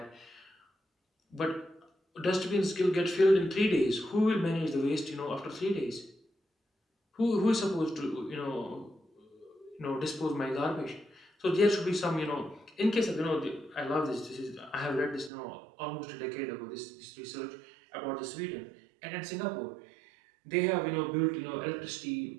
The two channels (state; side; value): drops out; left; at 15.3 s